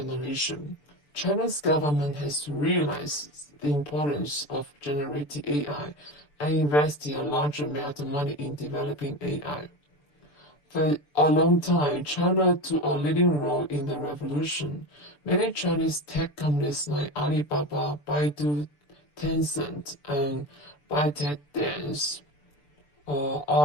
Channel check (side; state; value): right; late; 6.8 ms